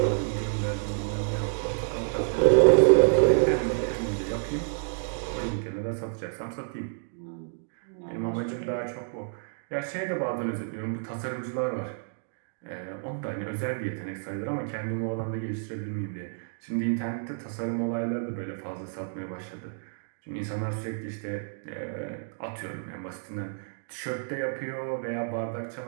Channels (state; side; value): silent; left; digital silence